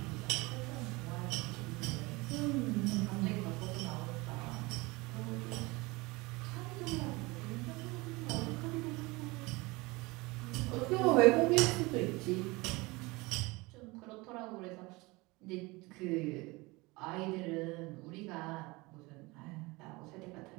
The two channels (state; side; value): quieter; left; 23.6 dB